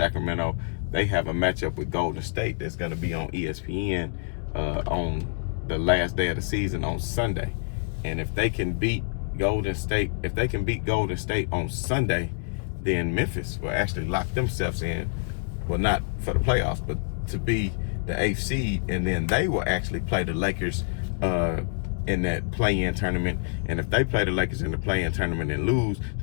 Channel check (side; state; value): right; silent; digital silence